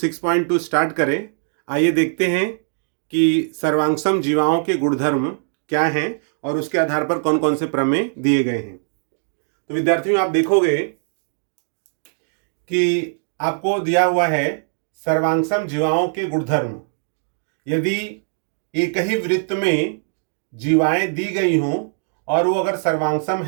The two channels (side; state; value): left; silent; digital silence